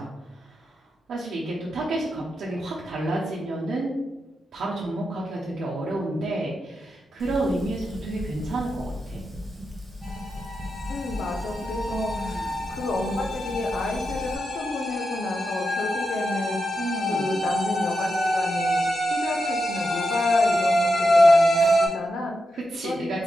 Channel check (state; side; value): normal; both; correlation 0.87